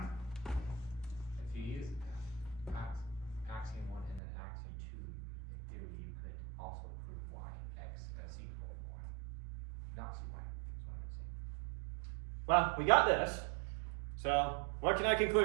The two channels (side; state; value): left; drops out; at 4.2 s